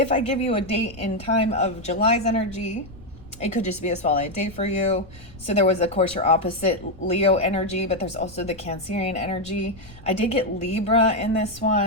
I give you a date and time of July's energy, it could just be a spotlight date for you. So there was, of course, your opposite Leo energy, but there's also the Cancerian energy. I did get Libra in this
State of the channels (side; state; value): left; noise; rumble, 21 dB below the sound